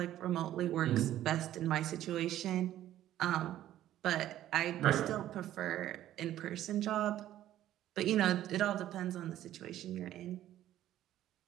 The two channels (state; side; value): quieter; left; 12.8 dB